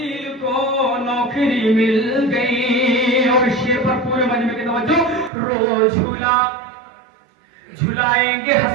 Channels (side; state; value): left; drops out; at 5.3 s